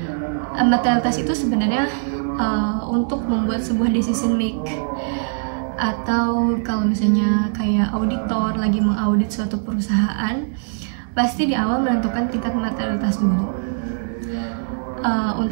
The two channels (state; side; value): silent; left; digital silence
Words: Materialitas itu sebenarnya untuk membuat sebuah decision make, atau kalau misalnya kayak auditor lagi mengaudit suatu perusahaan, pasti di awal menentukan tingkat materialitas dulu.